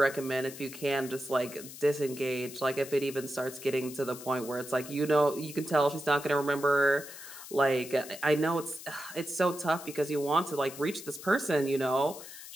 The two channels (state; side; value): noise; left; hiss, 14 dB below the sound